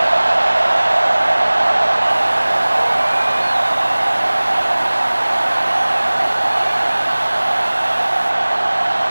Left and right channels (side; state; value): both; inverted; correlation -1.00